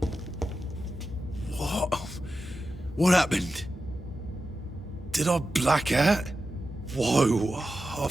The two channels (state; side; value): normal; both; correlation 0.91